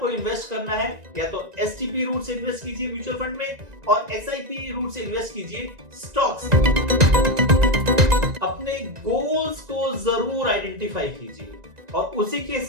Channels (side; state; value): left; late; 1.9 ms